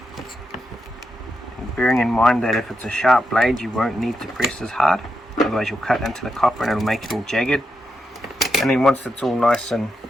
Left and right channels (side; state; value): both; normal; correlation 0.85